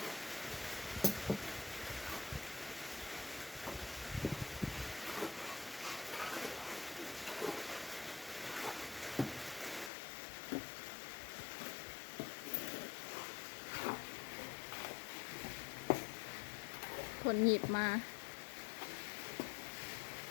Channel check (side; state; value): right; drops out; at 9.9 s